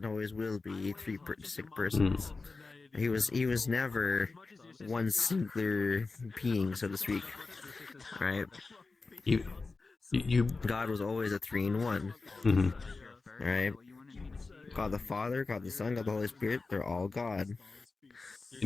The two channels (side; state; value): right; quieter; 3.9 dB